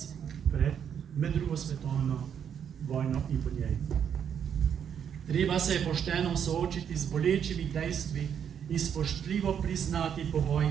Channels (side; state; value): left; quieter; 8.2 dB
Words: med drugo svetovno vojno in po njej. Treba se je pošteno soočiti z bolečimi dejstvi in spoštljivo priznati povoj